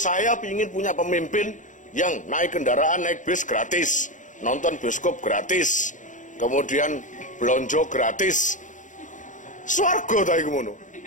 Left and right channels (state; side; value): late; right; 0.37 ms